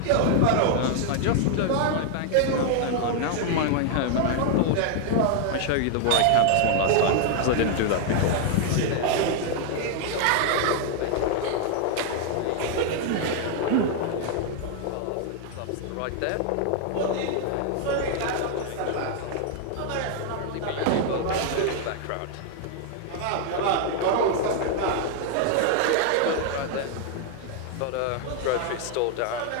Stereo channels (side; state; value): both; different; correlation 0.00